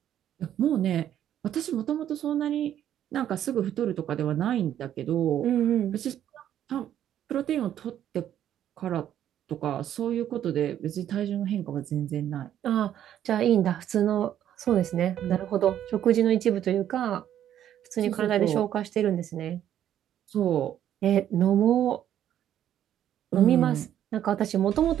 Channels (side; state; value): left; quieter; 10.8 dB